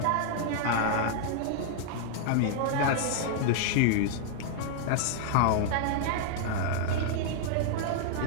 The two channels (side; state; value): both; different; correlation -0.01